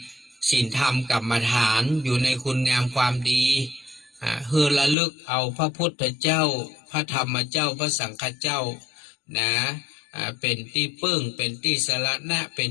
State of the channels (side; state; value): right; drops out; at 5.0 s